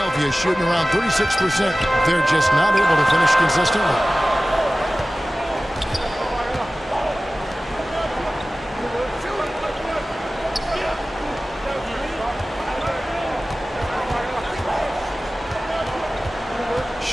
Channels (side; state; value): both; normal; correlation 0.97